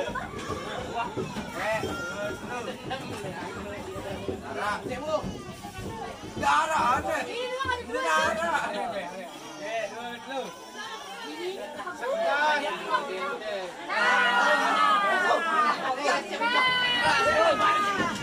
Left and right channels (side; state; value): both; identical; correlation 1.00